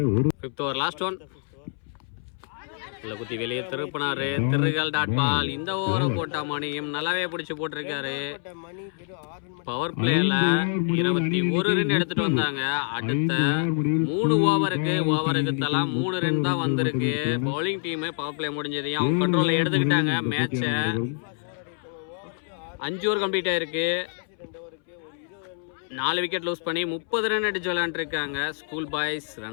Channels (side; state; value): right; silent; 61 dB below the other